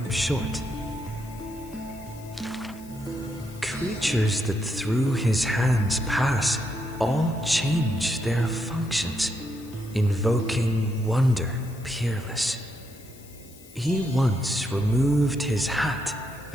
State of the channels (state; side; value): noise; left; hiss, 22 dB below the sound